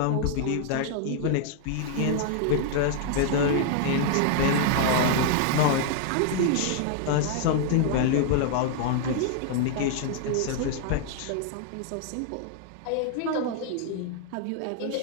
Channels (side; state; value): both; different; correlation 0.00